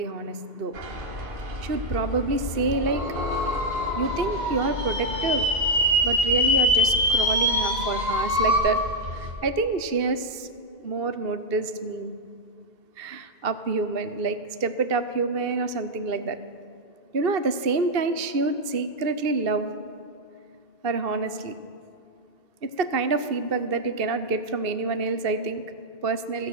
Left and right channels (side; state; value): left; late; 2.7 ms